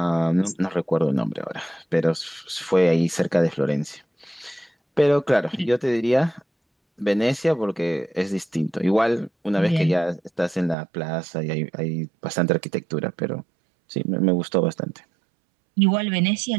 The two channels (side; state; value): left; drops out; at 10.8 s